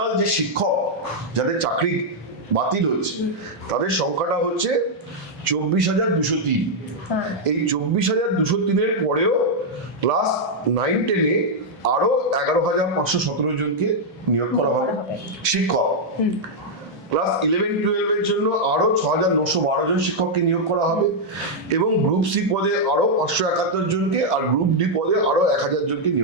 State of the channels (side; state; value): both; normal; correlation -0.03